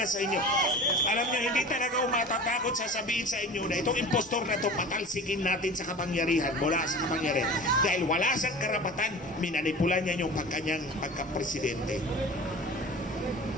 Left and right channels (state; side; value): normal; both; correlation 0.38